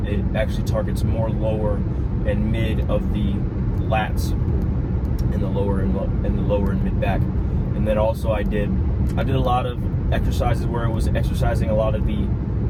actually targets more lower and mid of the lats in the lower and mid back. And then also I did a lot of exercises where I was exercising a lot of the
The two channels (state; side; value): identical; both; correlation 1.00